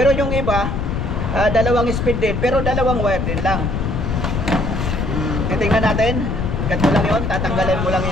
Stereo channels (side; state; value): left; noise; rumble, 1 dB below the sound